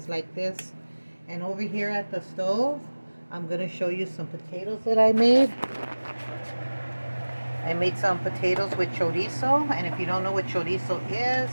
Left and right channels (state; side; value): inverted; both; correlation -1.00